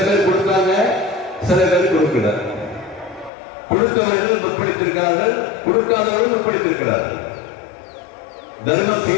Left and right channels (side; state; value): right; drops out; at 3.3 s